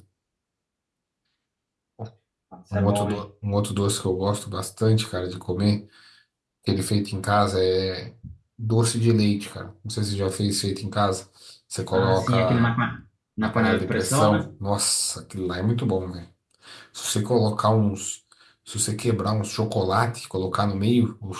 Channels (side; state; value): both; identical; correlation 1.00